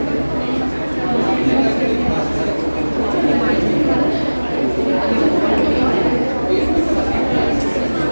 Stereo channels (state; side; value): inverted; both; correlation -1.00